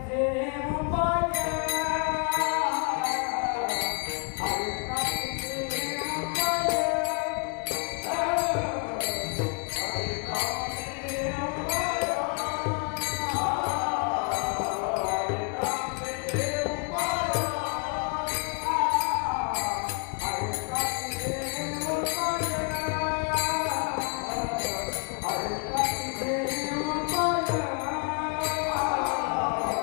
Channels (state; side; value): quieter; right; 34.9 dB